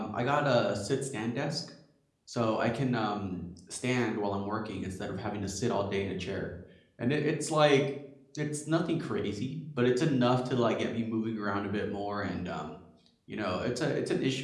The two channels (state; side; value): identical; both; correlation 1.00